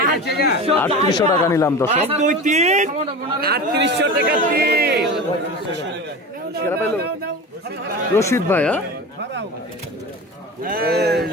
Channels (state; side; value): normal; both; correlation 0.30